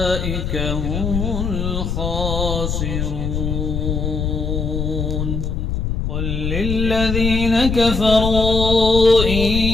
هم الخاسرون. قل للذين كفروا إن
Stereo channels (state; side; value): noise; left; rumble, 2 dB below the sound